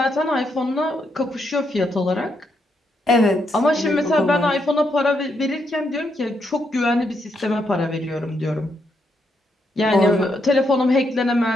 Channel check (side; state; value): both; normal; correlation 0.78